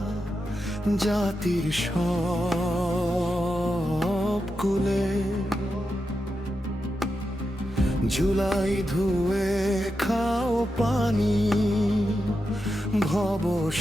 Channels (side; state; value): both; normal; correlation 0.88